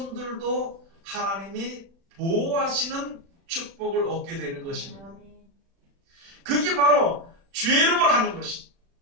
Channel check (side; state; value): left; late; 36 ms